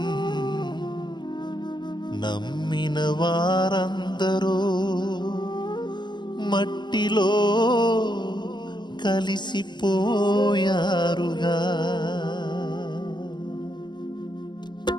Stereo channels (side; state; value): right; late; 0.21 ms